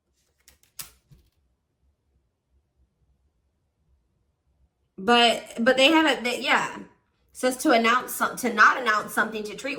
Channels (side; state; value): both; identical; correlation 1.00